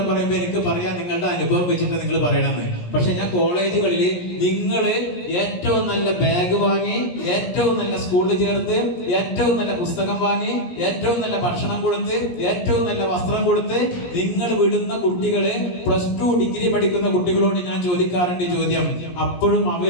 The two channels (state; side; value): late; right; 17 ms